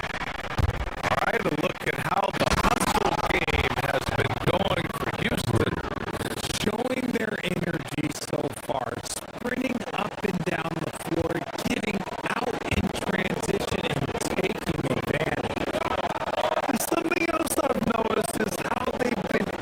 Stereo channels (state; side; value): identical; both; correlation 1.00